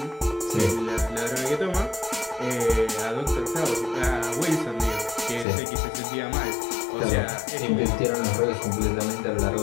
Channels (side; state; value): right; drops out; at 5.5 s